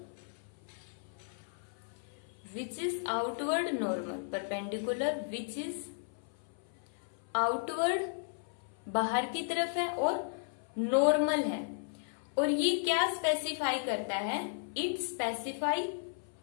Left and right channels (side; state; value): right; silent; 55 dB below the other